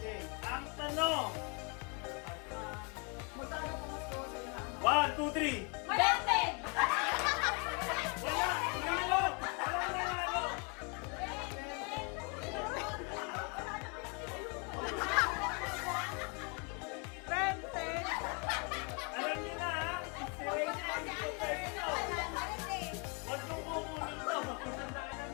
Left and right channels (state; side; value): quieter; right; 34.1 dB